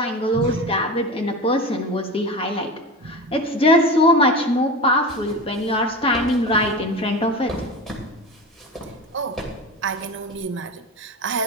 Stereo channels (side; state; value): both; normal; correlation 0.28